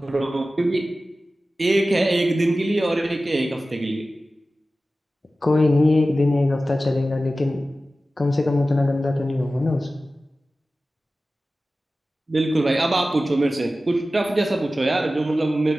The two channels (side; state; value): both; normal; correlation 0.95